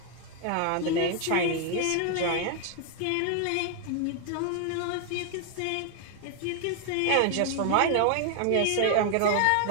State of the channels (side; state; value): both; different; correlation 0.00